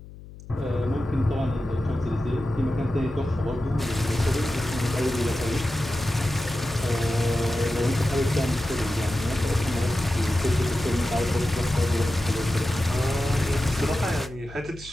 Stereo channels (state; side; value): noise; left; hum, 17 dB below the sound